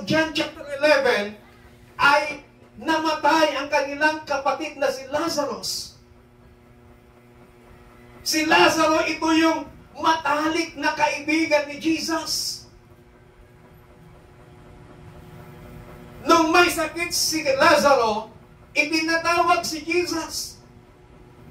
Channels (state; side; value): identical; both; correlation 1.00